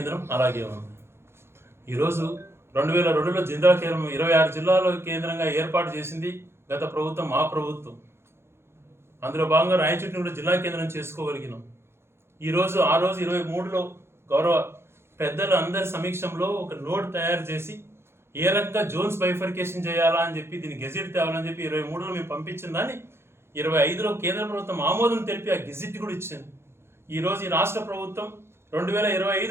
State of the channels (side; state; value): left; late; 0.12 ms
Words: అలాగే ఉంది. ఈరోజు 2002లో జిల్లా కేంద్రం 26 జిల్లాల కేంద్రంగా ఏర్పాటు చేసింది గత ప్రభుత్వం, మా ప్రభుత్వం. అందులో భాగంగా రాయచోటిని కూడా జిల్లా కేంద్రం చేసుకోగలిగినాం. ఈరోజు ఆ రోజు 23లో గౌరవ పెద్దలు అందరి సమీక్షంలో ఒక నోట్ తయారు చేసి ఏ రకంగా జోన్స్ బైఫర్కేషన్ చేయాలా అని చెప్పి దీన్ని గెజిట్ తేవాలని చెప్పి 23లో మేము పంపించిన దాన్ని 25లో కేంద్ర ప్రభుత్వం ఆమోదం తెలిపి ఆ గెజిట్ కూడా ఇచ్చింది. ఈరోజు ఈ రాష్ట్ర ప్రభుత్వం